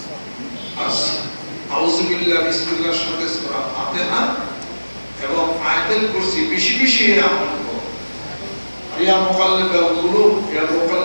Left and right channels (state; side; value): inverted; both; correlation -1.00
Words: আউযু বিল্লাহি বিসমিল্লাহির সাথে সূরা ফাতিহা এবং আয়াতুল কুরসি বেশি বেশি আমল করো ইয়া